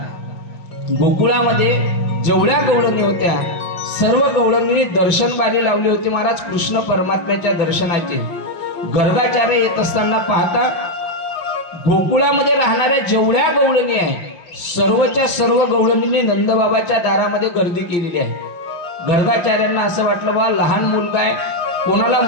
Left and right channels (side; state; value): right; late; 5.7 ms